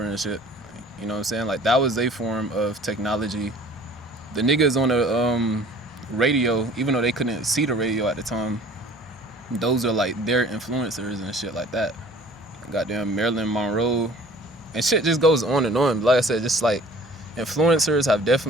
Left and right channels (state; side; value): normal; both; correlation 0.49